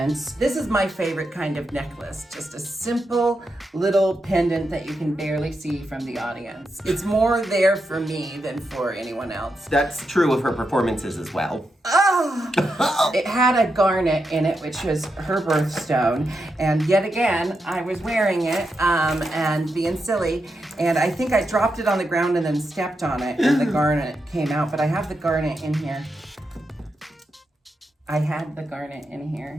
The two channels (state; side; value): normal; both; correlation 0.85